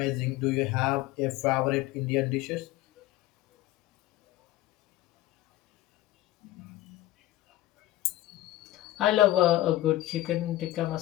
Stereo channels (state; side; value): quieter; right; 15.7 dB